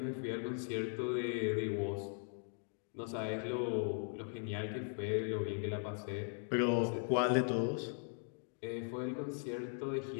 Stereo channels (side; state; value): right; silent; 52 dB below the other